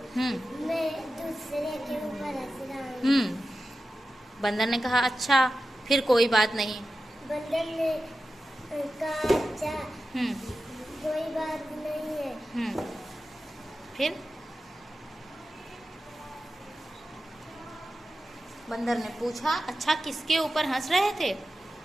मैं दूसरे के ऊपर हंस रहा हूँ। बंदर ने कहा अच्छा, फिर कोई बात नहीं। बंदर ने कहा अच्छा, कोई बात नहीं है। फिर बंदर ने पूछा अच्छा किसके ऊपर हंस रहे थे?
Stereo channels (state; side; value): normal; both; correlation 0.93